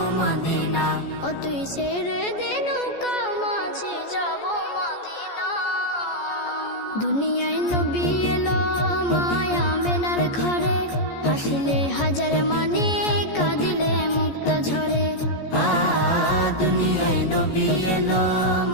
মদিনা। ও তুই ছেড়ে দে নৌকা মাঝি যাব মদিনা। দুনিয়ায় নবী এলো মায়া মেনার ঘরে, হাসিলে হাজার মানে কাঁদিলে মুক্তা ঝরে। দুনিয়ায় নবী এলো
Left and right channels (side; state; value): right; late; 14 ms